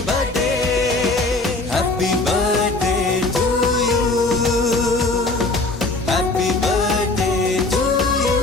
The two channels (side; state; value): right; quieter; 3.2 dB